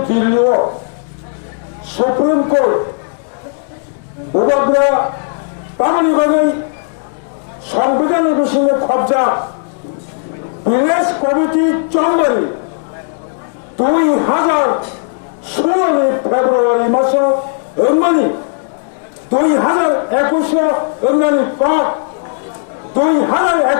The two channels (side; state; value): right; silent; digital silence